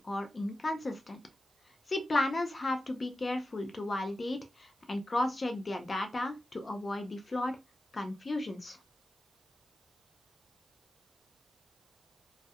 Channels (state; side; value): normal; both; correlation 0.92